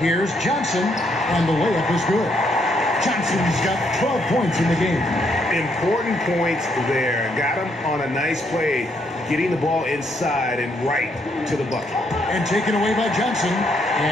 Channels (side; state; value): both; normal; correlation 0.73